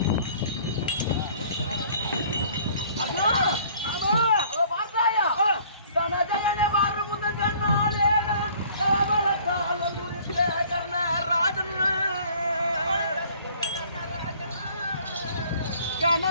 பார்த்தாயா தனஜயனை பாரு முத கண்ணாலே தவளத்தால் முடித்த கர்ணராஜன்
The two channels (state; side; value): inverted; both; correlation -0.55